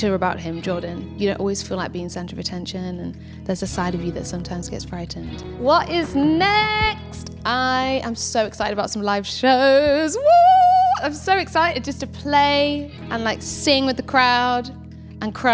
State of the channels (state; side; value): identical; both; correlation 1.00